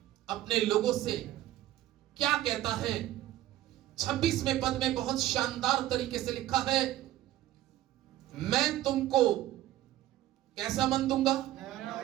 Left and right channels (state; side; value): quieter; left; 14.3 dB